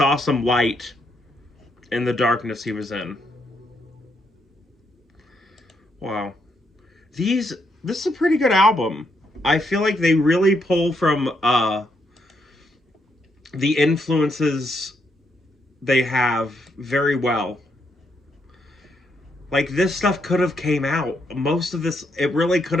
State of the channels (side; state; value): both; normal; correlation 0.77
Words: some light in the darkness he was in. Wow. This is a pretty good album. I feel like they really pull from the influences they have very well. Like this stuff could have came out. Most of this, it really could